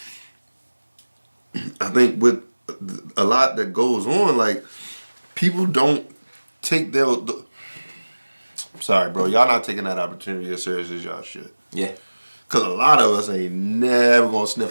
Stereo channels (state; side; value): inverted; both; correlation -1.00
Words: I think with a lot that goes on, like people don't take their. Sorry, bro. Y'all not taking that opportunity as serious as y'all should. Yeah. Because a lot of us ain't never going to